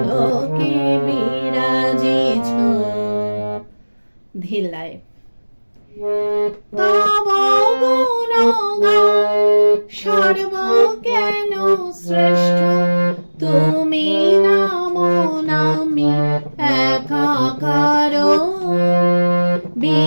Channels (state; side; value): inverted; both; correlation -1.00